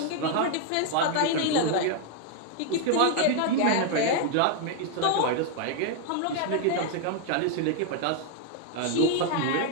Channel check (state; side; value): different; both; correlation 0.00